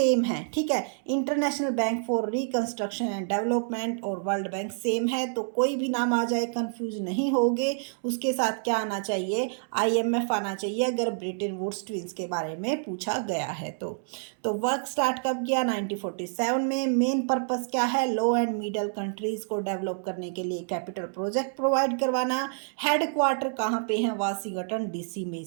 है। ठीक है, international bank for reconstruction and development और वर्ल्ड बैंक सेम है, तो कोई भी नाम आ जाए कंफ्यूज नहीं होगे। उसके साथ क्या आना चाहिए, आईएमएफ आना चाहिए अगर ब्रेटन वुड्स ट्विंस के बारे में पूछा गया है तो वर्क स्टार्ट कब किया, 1947 में। मेन पर्पस क्या है, लो एंड मिडल कंट्रीज को डेवलप करने के लिए कैपिटल प्रोजेक्ट प्रोवाइड करवाना। हेडक्वार्टर कहाँ पे है, वाशिंगटन डीसी में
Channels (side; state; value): left; silent; digital silence